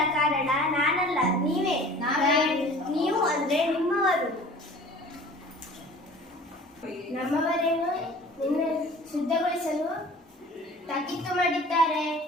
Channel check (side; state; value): both; normal; correlation 0.46